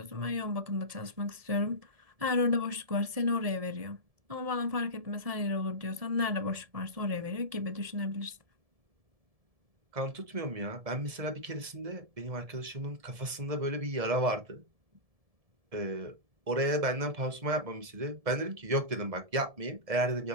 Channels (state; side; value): late; left; 1.7 ms